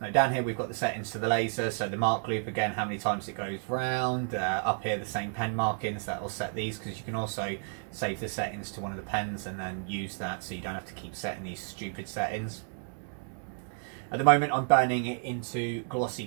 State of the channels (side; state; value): left; silent; 57 dB below the other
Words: down here we've got the settings to the laser. So the mark loop, again, how many times it goes round. Up here the same pen markings, that will set these, because you can also save the settings to one of the pens and then use that, so you don't have to keep setting these stupid settings. At the moment I'm burning it into glossy